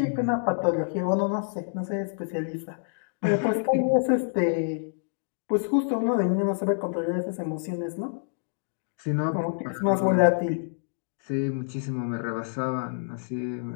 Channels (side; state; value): right; silent; digital silence